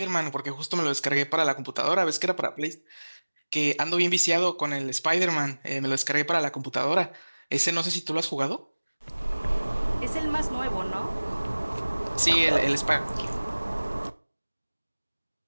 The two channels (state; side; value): inverted; both; correlation -1.00